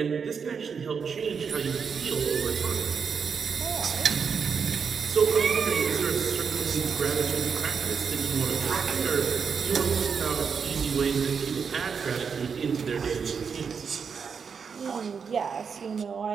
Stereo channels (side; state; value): left; quieter; 6.1 dB